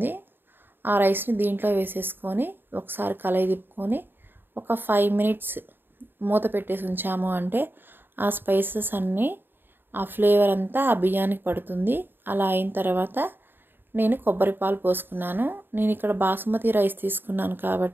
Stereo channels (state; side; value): late; left; 0.097 ms